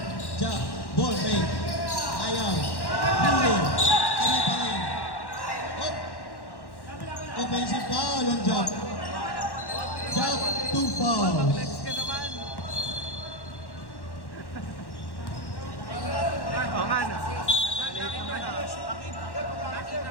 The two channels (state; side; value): late; right; 1.1 ms